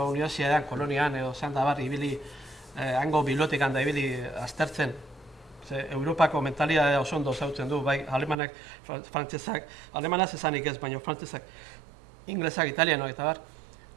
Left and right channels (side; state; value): left; drops out; at 8.4 s